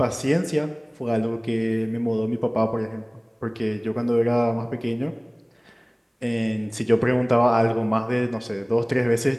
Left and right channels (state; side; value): identical; both; correlation 1.00